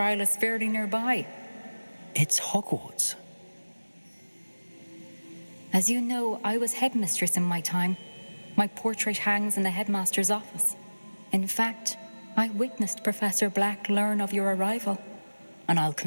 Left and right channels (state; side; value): inverted; both; correlation -1.00